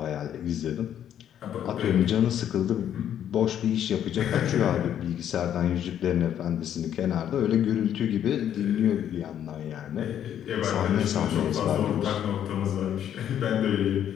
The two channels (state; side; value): quieter; right; 10.1 dB